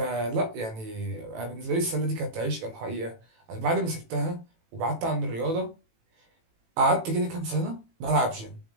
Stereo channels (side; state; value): left; late; 18 ms